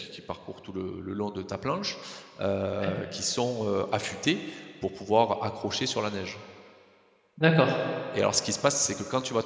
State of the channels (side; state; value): both; identical; correlation 1.00